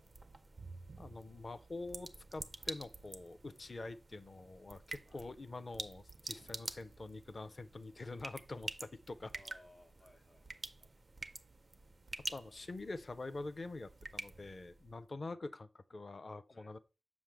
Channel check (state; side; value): normal; both; correlation 0.94